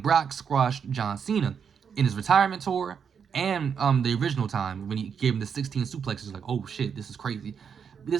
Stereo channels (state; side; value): quieter; left; 7.0 dB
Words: Brock squashed John Cena in his retirement tour and the original time when he gave him the 16 suplexes, like oh shit, this is crazy.